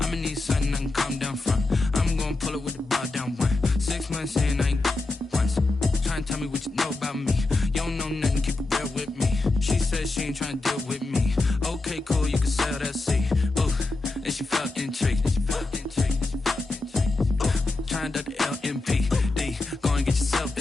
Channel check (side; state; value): right; quieter; 3.2 dB